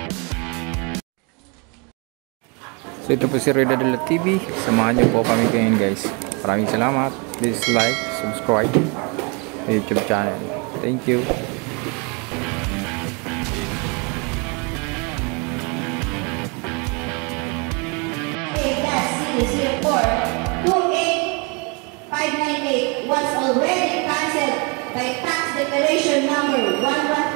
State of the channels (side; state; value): left; quieter; 32.1 dB